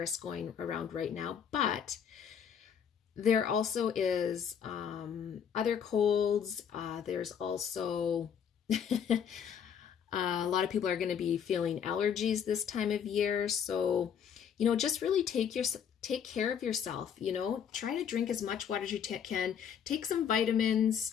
going around right now, but there also is other colds. There's also a lot of people are going to be feeling allergies this time of year. So, you know, just really take care of yourself. You know, try to drink as much water as you can. Take some vitamins.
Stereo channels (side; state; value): right; quieter; 8.0 dB